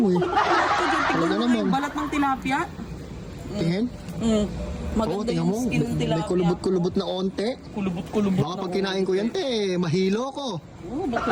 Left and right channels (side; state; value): both; identical; correlation 1.00